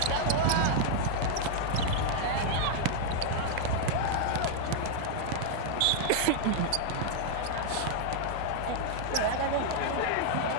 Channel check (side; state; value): both; different; correlation 0.00